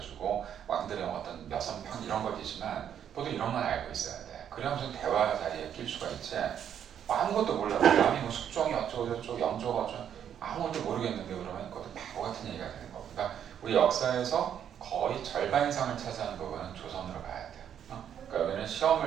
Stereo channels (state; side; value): quieter; left; 9.2 dB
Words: 왕들의 어떤 여성편 이런 거지만 모두 이런 건 알고 있어야 돼. 그래야 무슨 대화 자리에 낄 수가 있지. 아무것도 몰라. 남이 뭐 숙종이 어쩌고 영조가 어쩌고 아무것도 모르겠는데 그러면 그것도 바보 같은 얘기가 되는 거고. 그러니까 우리 역사에서 거의 절반 이상을 차지하는 부분은 조선으로 봐야 돼. 그러니까 여기는